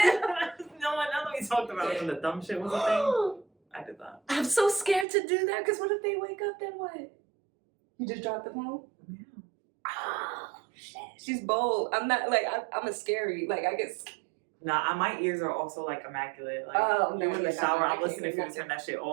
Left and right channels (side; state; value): left; drops out; at 5.1 s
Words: No, now that we talked about it when the dumb shit was a thing, I did that. I'm so scared to do that, because what if they wake up, then what? You just dropped the phone? Yeah. Oh, shit. She's bold. I'm not, like, I'm a scary, like, I get scared. Nah, my ears are also, like, immaculate. Like, no, in the shower, I'm listening for you to turn that shit